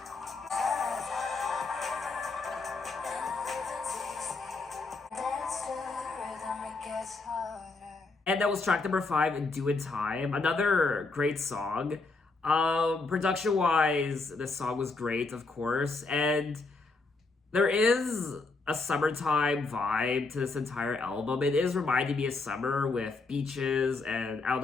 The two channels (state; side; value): quieter; right; 3.7 dB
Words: Dance to the rhythm, it gets harder. And that was track number 5, Doin' Time. Another great song. Production-wise, this song was great, of course. And there is a summertime vibe to this entire album. It is reminding me of summer with beaches and, I don't